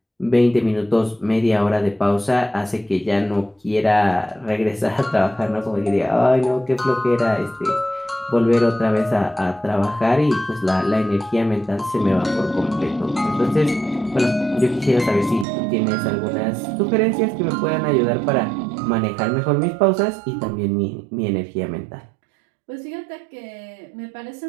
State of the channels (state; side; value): drops out; left; at 15.5 s